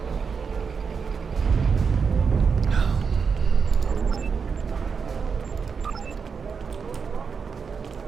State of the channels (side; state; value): left; quieter; 5.8 dB